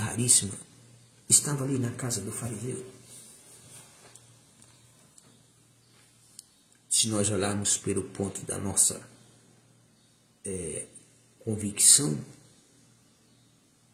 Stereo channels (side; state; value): both; identical; correlation 1.00